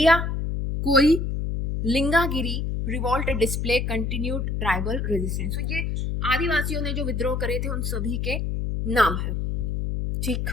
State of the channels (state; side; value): noise; left; hum, 1 dB below the sound